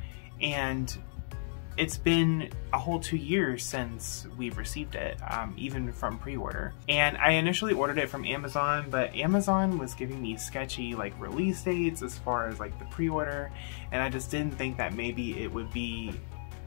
and it's been a whole 2 years since we've received it, even from pre-order. And I initially ordered it from Amazon, but Amazon was giving me sketchy release dates as far as the pre-order, and I just didn't think that maybe it would be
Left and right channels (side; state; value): right; silent; digital silence